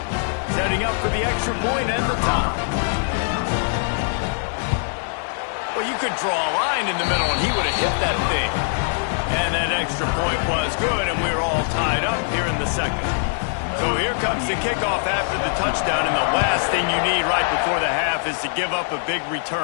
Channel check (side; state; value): right; silent; 64 dB below the other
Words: Setting up for the extra point and the top. Well, you could draw a line in the middle, and he would have hit that thing. And that extra point was good, and we're all tied up here in the second. So here comes the kickoff after the touchdown, and the last thing you need right before the half is to give up a big